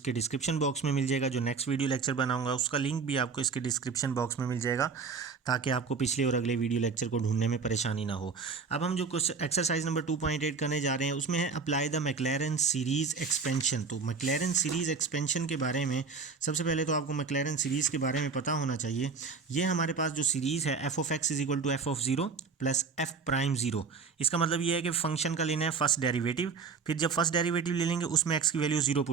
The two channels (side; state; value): left; quieter; 5.1 dB